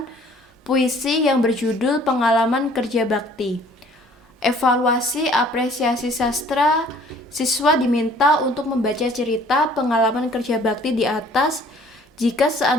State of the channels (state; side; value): normal; both; correlation 0.55